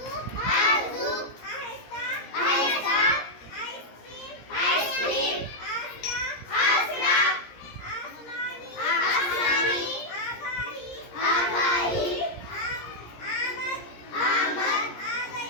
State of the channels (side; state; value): right; late; 17 ms